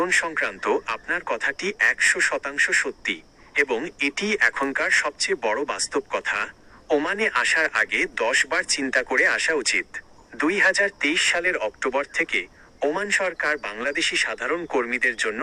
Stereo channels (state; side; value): identical; both; correlation 1.00